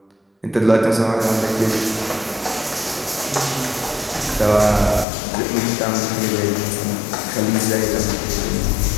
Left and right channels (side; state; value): right; drops out; at 5.1 s